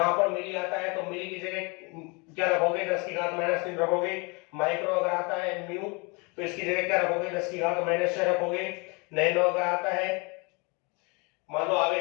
पर मिली आता है तो मिली की जगह क्या रखोगे? 10 की घात -3 रखोगे। माइक्रो अगर आता है म्यू तो इसकी जगह क्या रखोगे? 10 की घात -6 रखोगे। नैनो अगर आता है, मान लो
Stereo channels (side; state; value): right; quieter; 30.0 dB